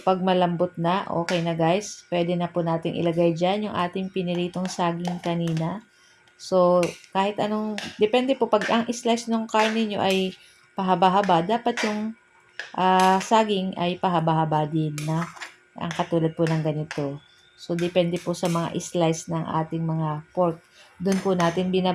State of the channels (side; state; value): both; identical; correlation 1.00